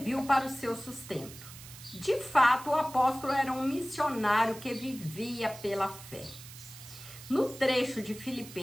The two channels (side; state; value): right; noise; hiss, 16 dB below the sound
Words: para o seu sustento. De fato, o apóstolo era um missionário que vivia pela fé. No trecho de